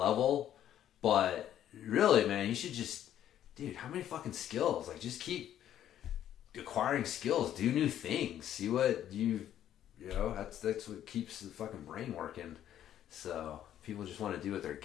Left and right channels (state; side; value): quieter; right; 11.1 dB